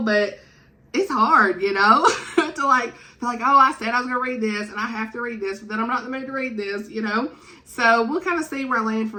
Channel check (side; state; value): both; identical; correlation 1.00